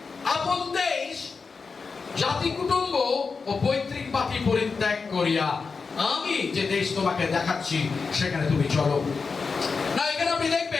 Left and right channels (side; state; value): right; quieter; 4.8 dB